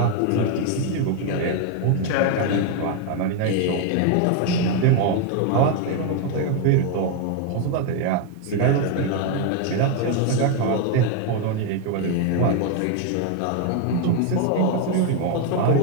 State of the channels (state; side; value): different; both; correlation 0.01